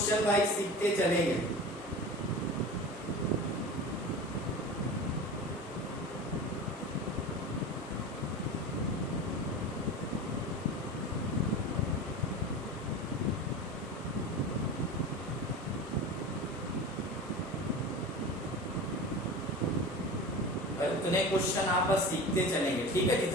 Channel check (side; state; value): both; normal; correlation 0.32